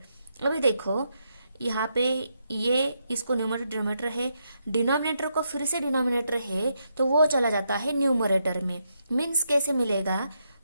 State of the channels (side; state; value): both; inverted; correlation -0.81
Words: अभी देखो यहाँ पे ये इसको न्यूमरेटर डिनोमिनेटर है, डिनोमिनेटर को फिर से डिनोमिनेटर है तो वो चला जाता है न्यूमरेटर में। मीन्स कैसे मिलेगा,